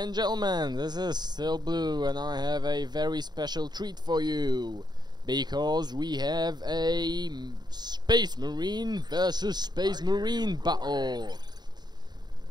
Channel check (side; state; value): left; late; 0.20 ms